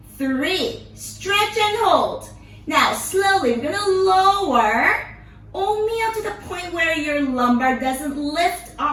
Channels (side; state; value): both; identical; correlation 1.00